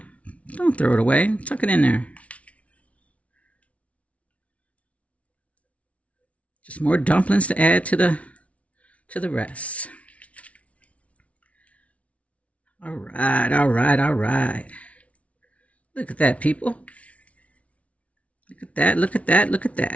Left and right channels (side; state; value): right; late; 0.065 ms